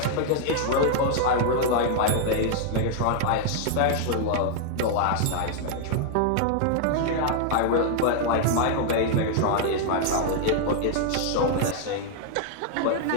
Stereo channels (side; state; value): both; different; correlation 0.00